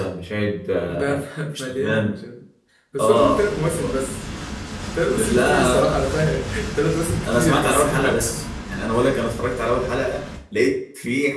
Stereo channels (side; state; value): both; identical; correlation 1.00